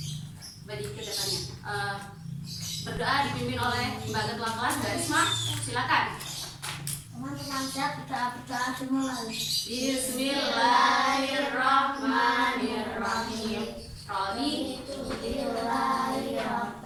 bagi kedepannya. Berdoa dipimpin oleh Mbak Ketua Kelas Mbak Risma. Silakan. Teman-teman siap berdoa dimulai. Bismillahirrahmanirrahim. Raditu billahi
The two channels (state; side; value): identical; both; correlation 1.00